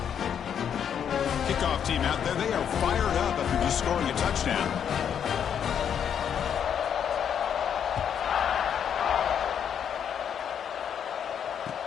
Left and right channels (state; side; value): quieter; right; 8.4 dB